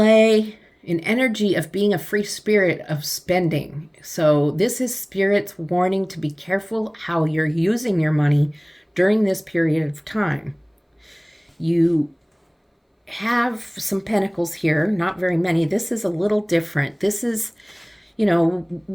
an energy of being a free spirit of spending. So this is Spirit's warning to be careful how you're using your money during this period of time. You have some pentacles here, not very many. This is a little different. This is,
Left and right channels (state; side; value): identical; both; correlation 1.00